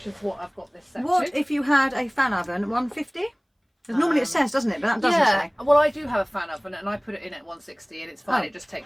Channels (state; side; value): identical; both; correlation 1.00